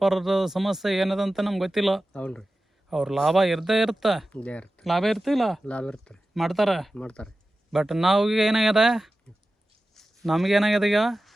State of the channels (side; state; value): both; normal; correlation 0.94